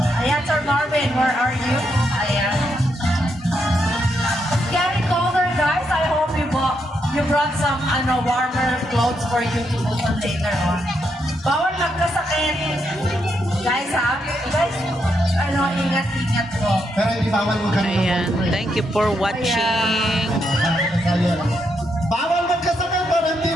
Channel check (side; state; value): both; normal; correlation 0.79